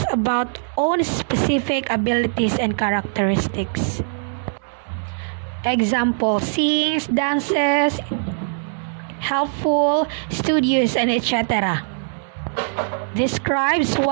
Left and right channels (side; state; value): left; silent; digital silence